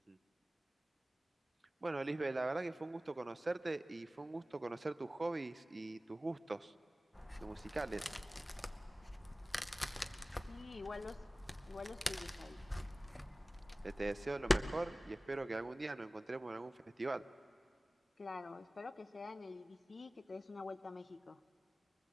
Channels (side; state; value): both; normal; correlation 0.97